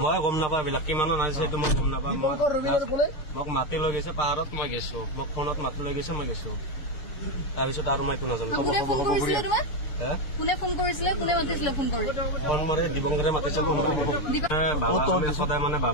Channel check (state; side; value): late; right; 6.6 ms